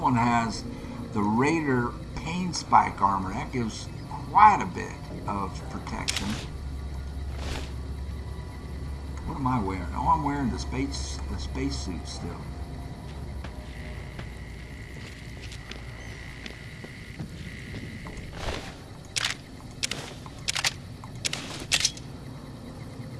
has the Raider Pain Spike armor. That gives quite a bit of protection. What am I wearing? Oh, I'm wearing the space suit still.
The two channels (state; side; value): identical; both; correlation 1.00